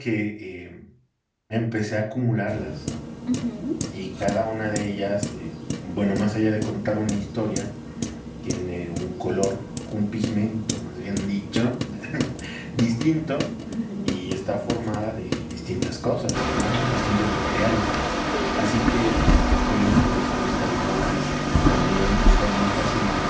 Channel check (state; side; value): identical; both; correlation 1.00